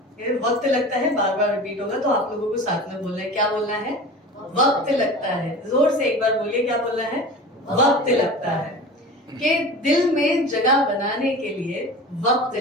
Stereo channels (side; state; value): both; normal; correlation 0.35